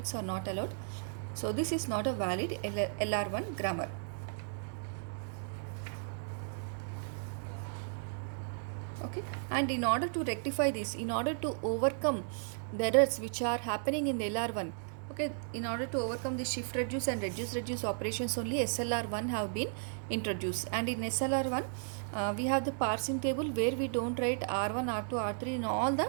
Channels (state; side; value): silent; left; digital silence